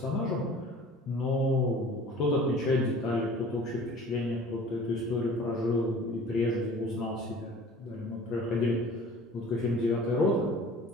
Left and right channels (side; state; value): both; normal; correlation 0.46